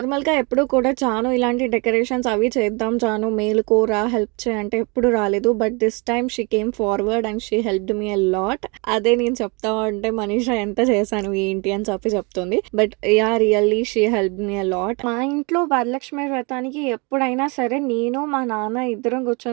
ఎప్పుడు కూడా చాను ఇలాంటి డెకరేషన్స్ అవి చేద్దాం చాను మేలుకోరా హెల్ప్ చేయి అంటే ఎప్పుడు రాలేదు. But this time she came forward and she helped me a lot. అదే నేను చెప్తా ఉంటే మనీషా ఎంత చేశాను ఏంటి అని చెప్పి చెప్తుంది. But yeah! Really she helped me a lot. మా ఇంట్లో వరలక్ష్మి వ్రతానికి ఎప్పుడైనా సరే నేను, మా నాన్న ఇద్దరం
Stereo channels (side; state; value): left; quieter; 30.5 dB